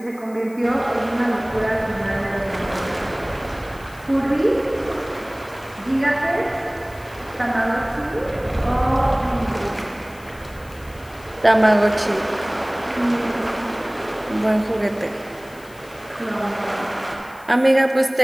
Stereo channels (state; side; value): noise; left; hiss, 24 dB below the sound